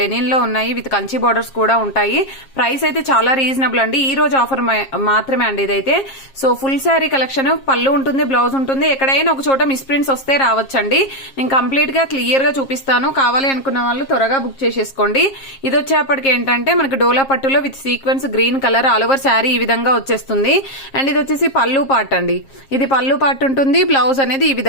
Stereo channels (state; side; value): late; right; 7.4 ms